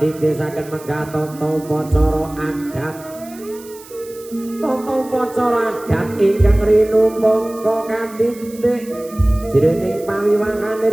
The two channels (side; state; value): right; noise; hiss, 20 dB below the sound